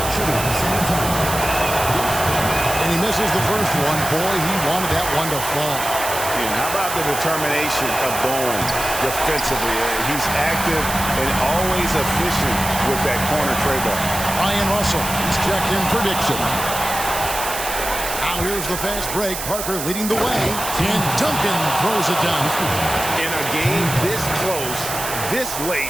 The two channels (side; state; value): right; noise; hiss, 6 dB below the sound